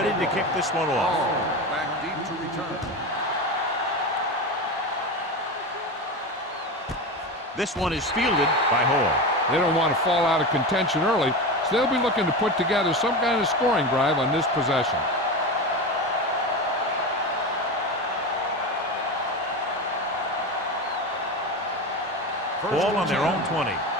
to kick this one off. Back deep to return. This one is fielded by Hall. They don't want to fall out of contention early, so they'll be looking to put together some kind of scoring drive on this possession. Ball on their own 20.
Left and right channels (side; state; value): both; normal; correlation 0.23